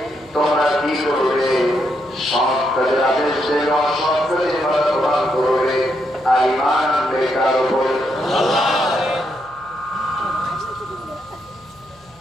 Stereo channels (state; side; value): noise; left; hum, 29 dB below the sound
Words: তোমরা কি করবে? সৎ কাজের আদেশ দেবে, অসৎ কাজের বাধা প্রদান করবে, আর ঈমান আনবে কার উপর?